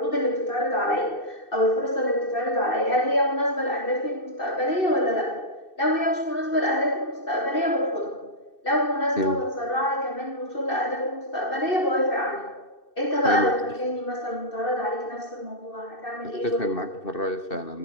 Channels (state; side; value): late; right; 2.6 ms